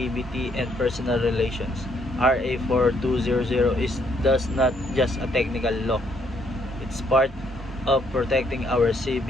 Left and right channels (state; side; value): normal; both; correlation 0.70